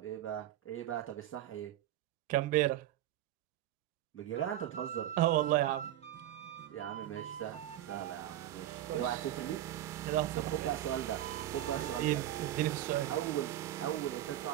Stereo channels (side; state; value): left; quieter; 12.9 dB